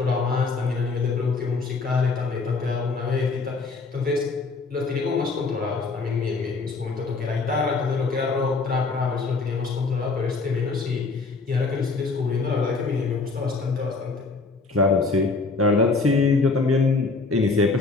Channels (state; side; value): quieter; right; 4.0 dB